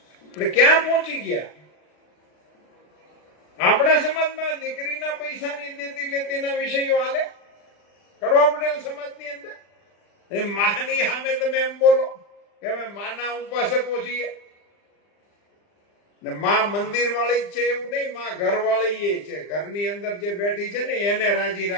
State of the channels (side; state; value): right; late; 39 ms